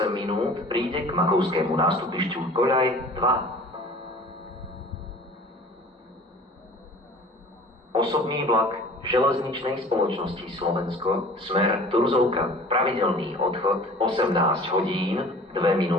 minút, príde k Makovskému nástupišťu koľaj 2. Osobný vlak železničnej spoločnosti Slovensko, smer Turzovka, pravidelný odchod 18 hodín 2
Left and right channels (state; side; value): normal; both; correlation 0.45